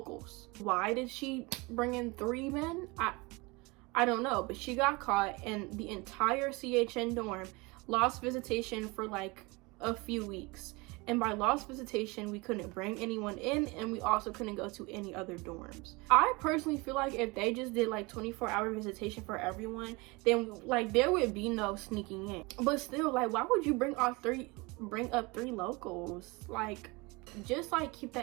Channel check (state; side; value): quieter; left; 25.6 dB